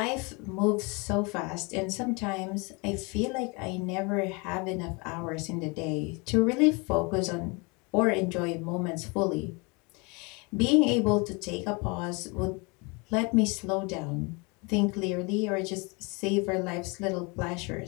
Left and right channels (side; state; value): right; quieter; 29.4 dB